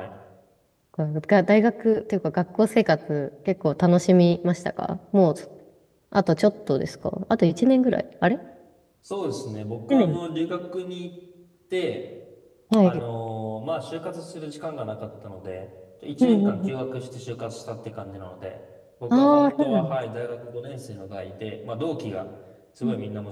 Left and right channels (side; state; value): both; identical; correlation 1.00